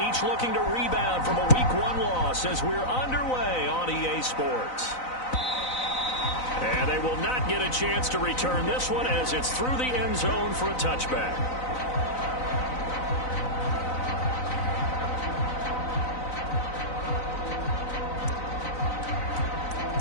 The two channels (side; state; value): right; late; 4.0 ms